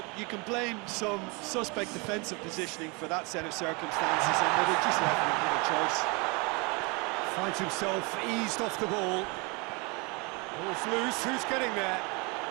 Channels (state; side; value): quieter; left; 29.4 dB